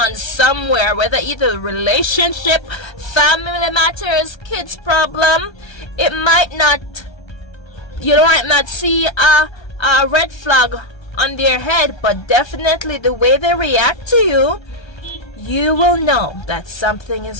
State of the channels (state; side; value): late; right; 1.3 ms